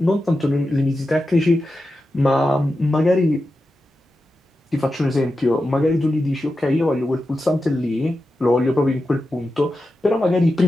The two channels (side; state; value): both; normal; correlation 0.91